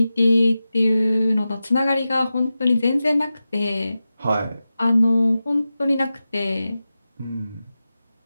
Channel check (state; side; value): inverted; both; correlation -0.93